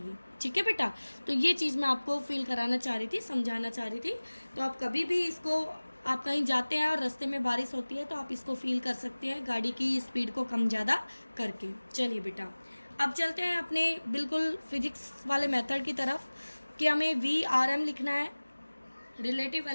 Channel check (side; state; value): both; inverted; correlation -1.00